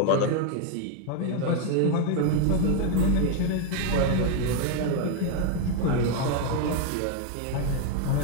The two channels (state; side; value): different; both; correlation 0.01